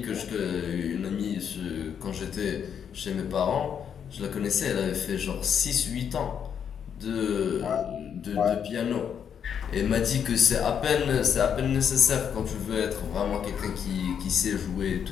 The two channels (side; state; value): right; quieter; 8.0 dB